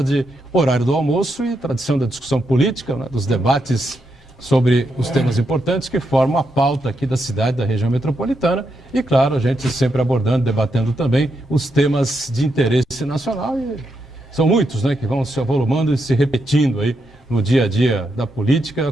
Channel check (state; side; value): normal; both; correlation 0.82